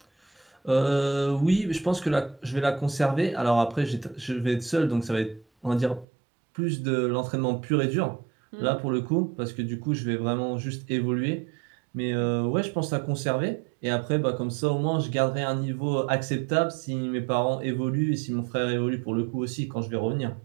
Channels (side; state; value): left; drops out; at 6.1 s